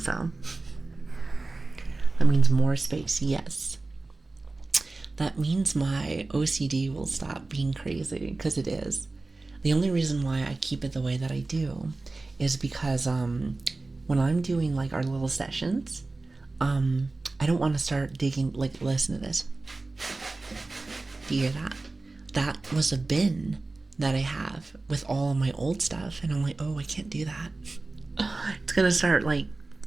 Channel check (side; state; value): left; quieter; 3.3 dB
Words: so. That means more space, yes. That means my OCD will stop being crazy, because it is. The only reason why I keep it the way that I do is because when I'm doing like our little sessions, I don't want to start digging. Like, listen to this. Do you hear that? That was a bin that I have with all of my old stuff, and I'm like, oh, I can't do that. It's gonna start like,